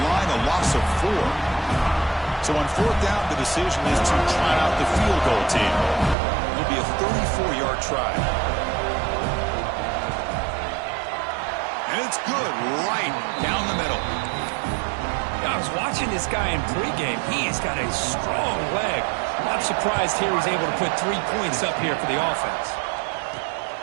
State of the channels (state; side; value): drops out; left; at 6.2 s